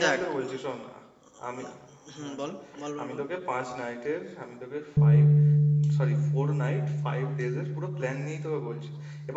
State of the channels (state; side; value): identical; both; correlation 1.00